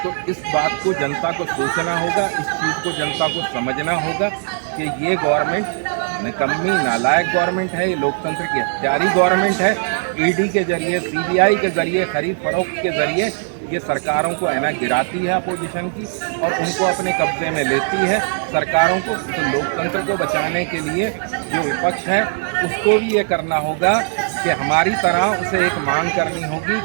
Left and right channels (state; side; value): silent; left; digital silence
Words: इस बात को जनता को सोचना होगा, इस चीज़ को जनता को समझना होगा कि ये गवर्नमेंट निकम्मी नालायक गवर्नमेंट है, ये लोकतंत्र की हत्यारी गवर्नमेंट है। ED के जरिए, CBI के जरिए, खरीद फरोख्त के जरिए ये सरकारों को है ना गिराती है अपोजिशन की, और उनको अपने कब्जे में लेती है सरकारों को। तो लोकतंत्र को बचाने के लिए जो विपक्ष है उसको भी ये करना होगा कि हमारी तरह उसे एक मांग करनी होगी